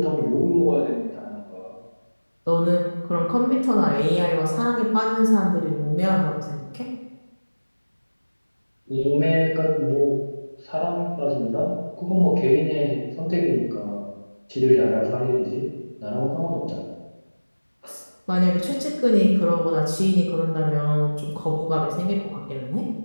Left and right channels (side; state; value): both; inverted; correlation -1.00